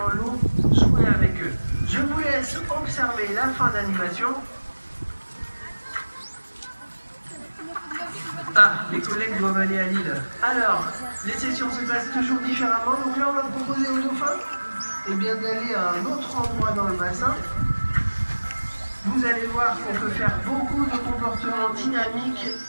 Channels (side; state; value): both; inverted; correlation -1.00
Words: l'eau, jouer avec eux. Je vous laisse observer la fin d'animation. Ah, les collègues doivent aller à Lille. Alors, les sessions se passent toujours différemment. Donc là, on va proposer aux dauphins d'aller à un autre endroit dans le bassin. Vous allez voir qu'on peut faire beaucoup de comportements dynamiques